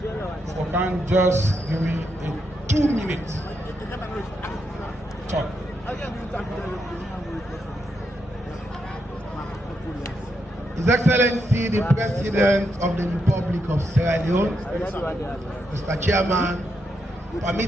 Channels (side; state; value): both; normal; correlation 0.82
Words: for can just give me a 2 minutes talk. His Excellency, the President of the Republic of Sierra Leone, Mr. Chairman,